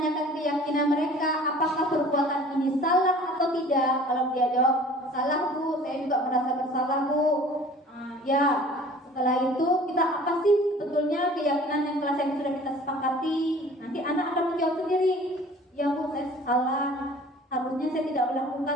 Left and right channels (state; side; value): normal; both; correlation 0.48